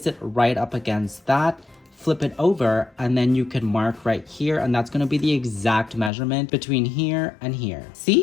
it right up against that, flip it over, and then you can mark right here, and that's going to be the exact measurement between here and here.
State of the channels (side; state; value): right; drops out; at 6.1 s